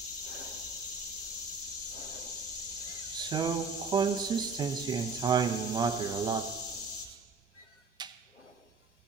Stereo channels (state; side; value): quieter; left; 4.4 dB